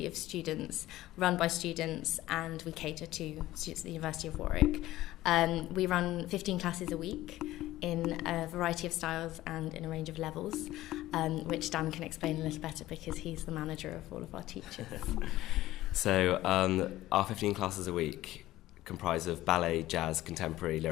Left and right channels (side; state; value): right; quieter; 15.7 dB